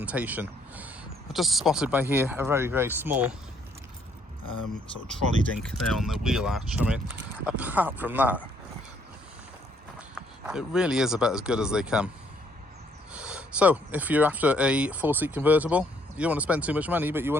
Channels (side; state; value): both; normal; correlation 0.67